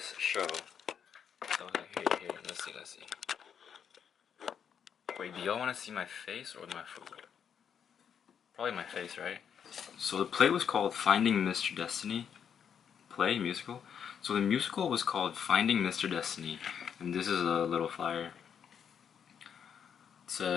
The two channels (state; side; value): quieter; right; 7.8 dB